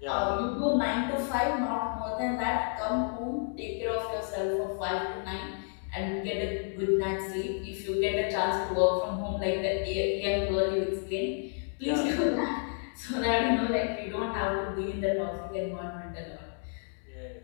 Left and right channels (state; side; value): silent; right; 57 dB below the other